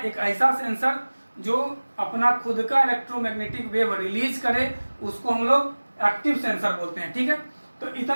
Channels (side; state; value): both; inverted; correlation -1.00